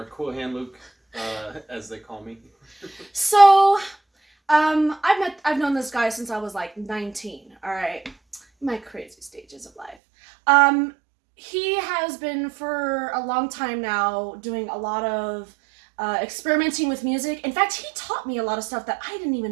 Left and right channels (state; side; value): drops out; left; at 10.0 s